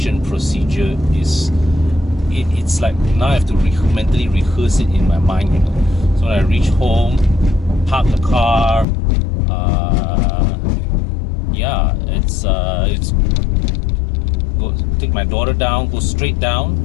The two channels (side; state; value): right; drops out; at 8.8 s